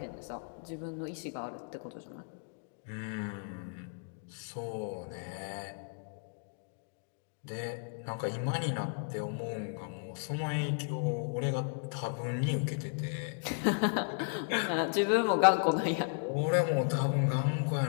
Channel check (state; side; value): silent; right; 55 dB below the other